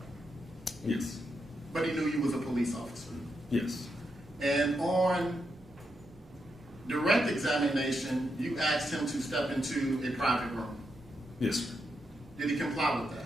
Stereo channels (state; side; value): normal; both; correlation 0.83